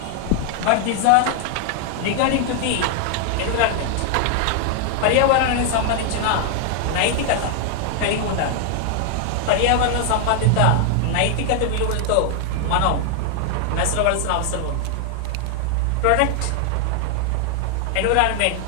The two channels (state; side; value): different; both; correlation 0.00